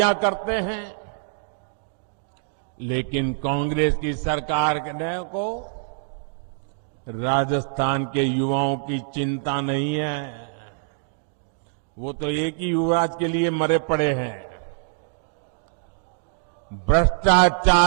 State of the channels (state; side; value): silent; left; digital silence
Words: करते हैं, लेकिन कांग्रेस की सरकार को राजस्थान के युवाओं की चिंता नहीं है। वो तो एक ही युवराज के लिए मरे पड़े हैं।